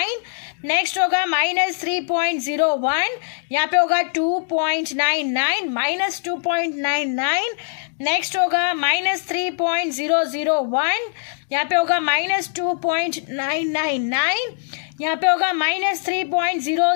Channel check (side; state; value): right; silent; digital silence